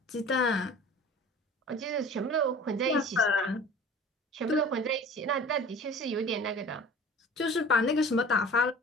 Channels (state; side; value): normal; both; correlation 0.43